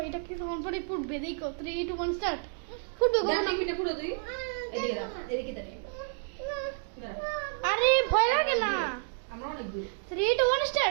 এটা কিছুক্ষণ পরে ফুটবে দেখো 3 2 1 স্টার্ট ফুটবে কখন দাঁড়া মিনিট পুরো তুই এদিকে দাও এদিকে দাঁড়িয়ে আরে ভয় লাগে না আমরা অনেক দূর 3 2 1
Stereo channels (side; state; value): left; silent; 58 dB below the other